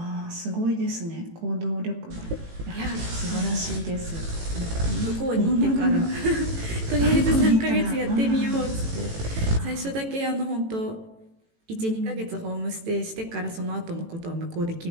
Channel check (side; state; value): left; late; 18 ms